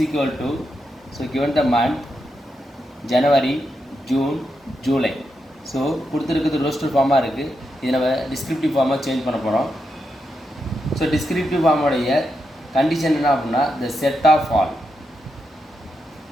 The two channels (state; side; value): normal; both; correlation 0.84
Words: equal to, so given the month January, June, July. So கொடுத்திருக்கிறது roster form-ஆ இருக்கு. இதை நம்ம descriptive form-ஆ சேஞ்ச் பண்ண போறோம். So descriptive form-உடைய condition என்ன அப்படின்னா the set of all.